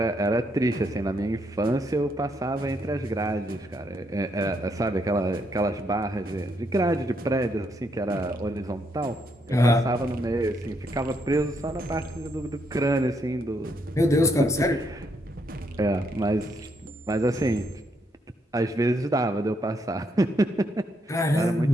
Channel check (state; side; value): normal; both; correlation 0.75